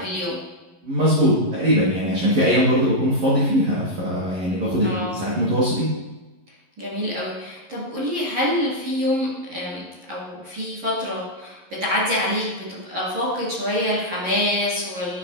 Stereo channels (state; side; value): late; left; 11 ms